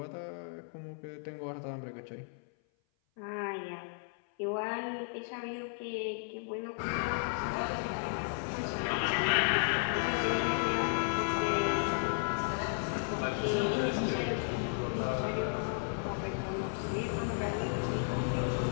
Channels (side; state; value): right; silent; 55 dB below the other